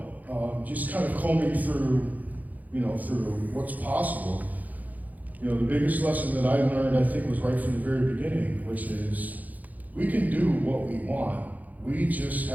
just kind of combing through, through what's possible. The biggest lesson that I learned, I think, was right from the very beginning, which is we can do what we want. We just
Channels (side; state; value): left; late; 0.080 ms